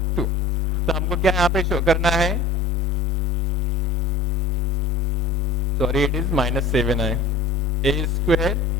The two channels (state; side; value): quieter; right; 3.0 dB